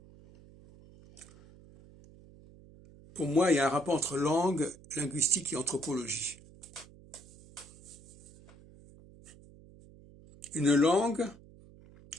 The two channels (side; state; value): right; noise; hum, 22 dB below the sound